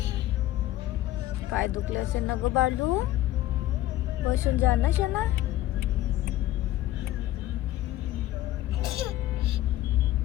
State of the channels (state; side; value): quieter; right; 14.6 dB